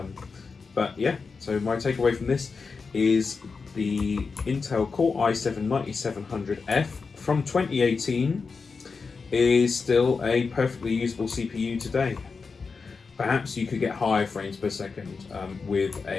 But yeah, so my takeaway from this is the Intel Core i7-9700F from 2018 is still a perfectly usable CPU today. Perhaps you could get higher frames per second with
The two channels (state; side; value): quieter; right; 4.8 dB